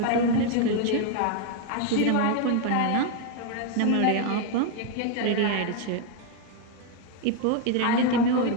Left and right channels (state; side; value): different; both; correlation 0.01